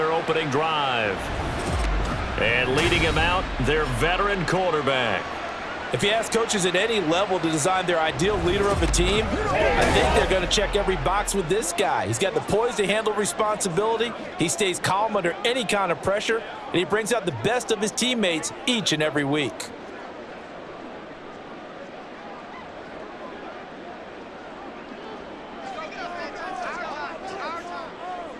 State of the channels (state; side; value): identical; both; correlation 1.00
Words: opening drive. And leading him out, their veteran quarterback. If you ask coaches at any level to design their ideal leader of a team, I think they're going to check every box with this guy. He's got the poise to handle responsibility. He stays calm under any kind of pressure, and he brings out the best of his teammates each and every week.